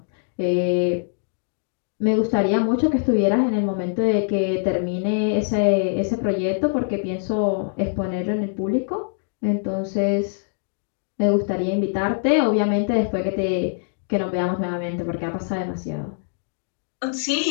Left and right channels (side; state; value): right; silent; digital silence